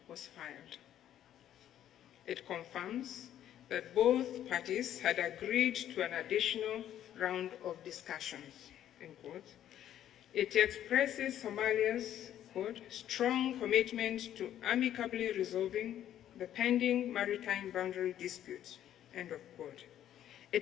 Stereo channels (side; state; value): right; quieter; 11.2 dB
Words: was filed. It confirms that both parties had agreed to an additional round of discussions, end quote. It expresses Somalia's, quote, strong commitment to amicably resolving the pending maritime boundary dispute, end of quote.